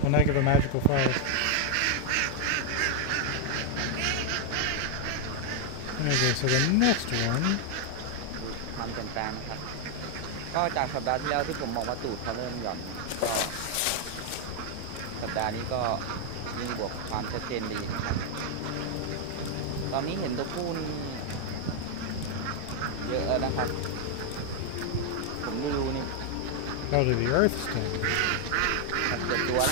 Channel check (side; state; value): both; different; correlation 0.00